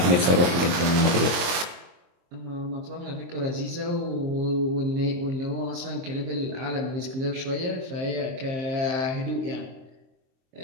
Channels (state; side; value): late; left; 23 ms